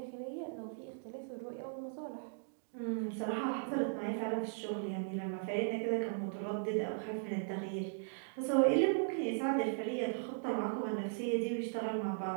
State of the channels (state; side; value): silent; left; digital silence